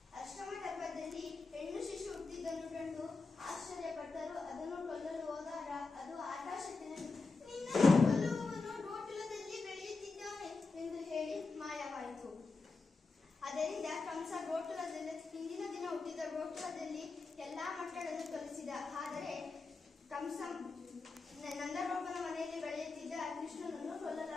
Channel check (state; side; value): quieter; right; 4.0 dB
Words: ಅಷ್ಟಮ ಗರ್ಭದಲ್ಲಿ ಹೆಣ್ಣು ಶಿಶು ಹುಟ್ಟಿದ್ದನ್ನು ಕಂಡು ಆಶ್ಚರ್ಯಪಟ್ಟರು. ಅದನ್ನು ಕೊಲ್ಲಲು ಹೋದಾಗ ಅದು ಆಕಾಶದಲ್ಲಿ, ನಿನ್ನನ್ನು ಕೊಲ್ಲುವವನು ಗೋಕುಲದಲ್ಲಿ ಬೆಳೆಯುತ್ತಿದ್ದಾನೆ ಎಂದು ಹೇಳಿ ಮಾಯವಾಯಿತು. ಅದರಿಂದ ಕಂಸ ಗೋಕುಲದಲ್ಲಿ ಹಿಂದಿನ ದಿನ ಹುಟ್ಟಿದ ಗೋಕುಲದಲ್ಲಿ ಎಲ್ಲಾ ಮಕ್ಕಳನ್ನು ಕೊಲ್ಲಿಸಿದ. ಆದರೆ ಕಂಸ ನಂದಗೋಪನ ಮನೆಯಲ್ಲಿ ಬೆಳೆಯುತ್ತಿದ್ದ ಕೃಷ್ಣನನ್ನು